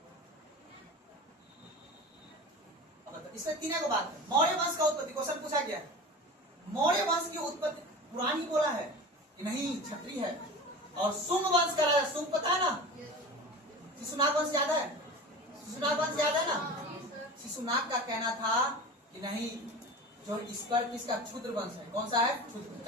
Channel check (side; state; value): both; normal; correlation 0.33